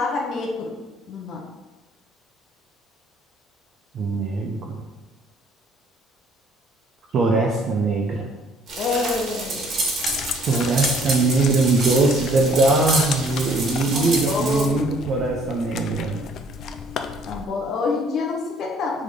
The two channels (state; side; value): normal; both; correlation 0.60